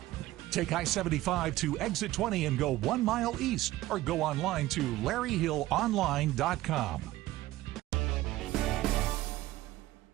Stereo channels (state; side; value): quieter; left; 16.4 dB